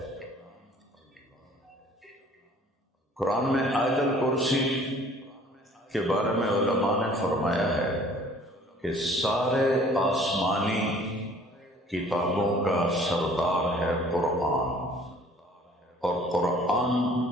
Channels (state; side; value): normal; both; correlation 0.53